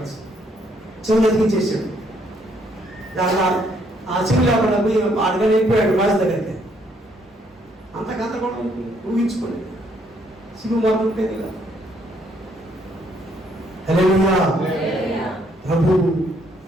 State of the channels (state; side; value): normal; both; correlation 0.69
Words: చెవులు ఎదిగించేసాడు. ఆ చెవులు ఎవరు అడగని వెళ్ళిపోయాడు వారి దగ్గరికి. అంతకంత కూడా ఊహించుకోలేదు. శిలువ మోతు ఉంటుంది కదా. హల్లెలూయా. ప్రభు